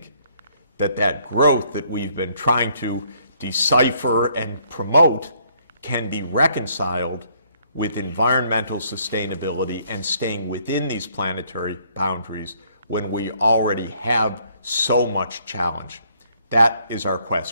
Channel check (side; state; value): both; inverted; correlation -0.67